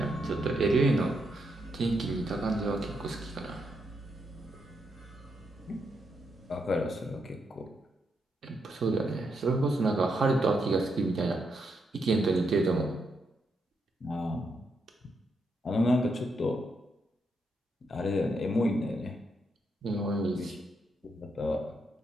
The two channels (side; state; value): both; normal; correlation 0.80